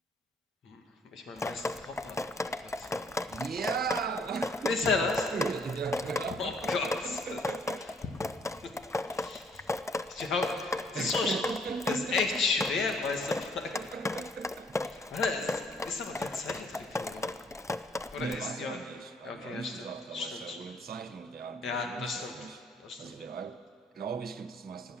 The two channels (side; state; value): both; normal; correlation 0.64